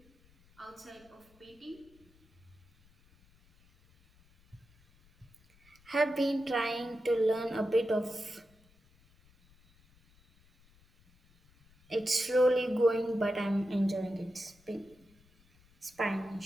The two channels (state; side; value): noise; left; rumble, 30 dB below the sound